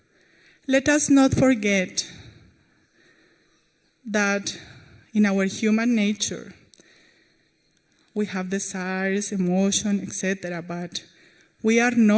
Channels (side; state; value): both; identical; correlation 1.00